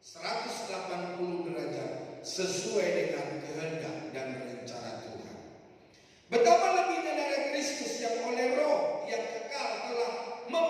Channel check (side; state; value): both; identical; correlation 1.00